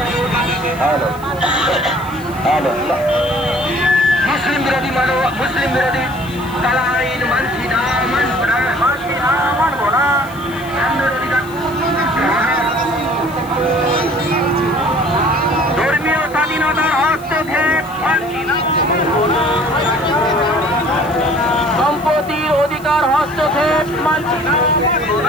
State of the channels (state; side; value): noise; right; hiss, 23 dB below the sound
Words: মুসলিম বিরোধী মুসলিম বিরোধী কালা আইন মানছি না, মানব না, মানছি না, মানব না। ধর্মীয় স্বাধীনতার হস্তক্ষেপ মানছি না, সম্পত্তির অধিকার হস্তক্ষেপ মানছি না,